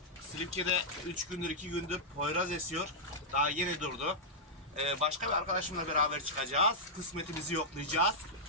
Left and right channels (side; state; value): both; normal; correlation -0.08